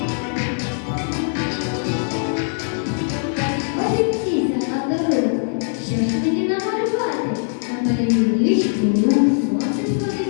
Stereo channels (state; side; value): silent; right; 63 dB below the other